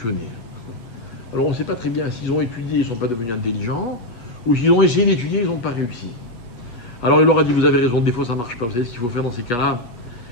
Alors on ne sait pas très bien s'ils ont étudié, ils ne sont pas devenus intelligents, ou s'ils ont essayé d'étudier, ils n'ont pas réussi. Alors il leur a dit, vous avez raison, des fois ça ne marche pas. Vous savez ce qu'il faut faire dans ces cas-là?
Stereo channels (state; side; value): late; right; 8.3 ms